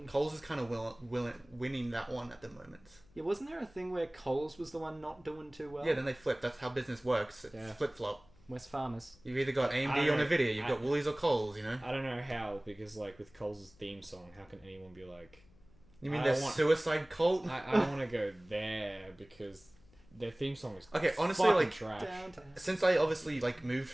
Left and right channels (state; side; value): noise; left; hum, 27 dB below the sound